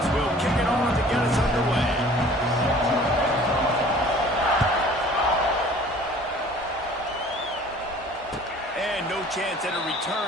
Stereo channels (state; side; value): normal; both; correlation 0.50